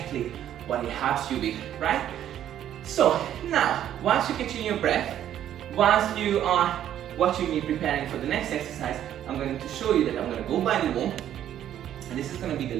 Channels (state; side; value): quieter; left; 11.0 dB